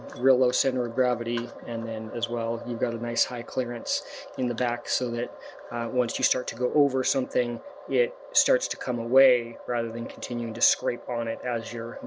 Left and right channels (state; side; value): identical; both; correlation 1.00